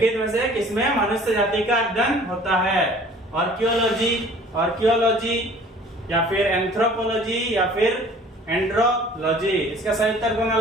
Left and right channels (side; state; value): both; normal; correlation 0.50